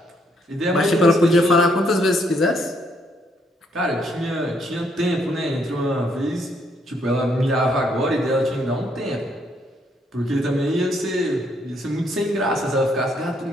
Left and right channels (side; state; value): both; normal; correlation 0.71